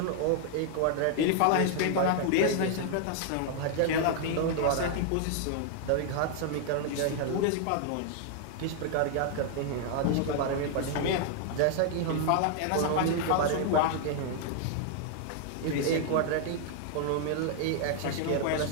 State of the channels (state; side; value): different; both; correlation 0.00